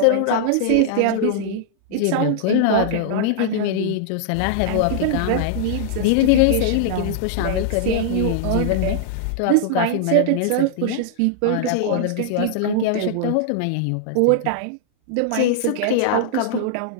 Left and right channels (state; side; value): different; both; correlation -0.01